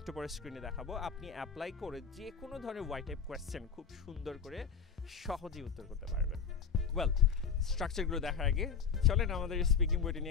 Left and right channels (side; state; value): right; quieter; 6.4 dB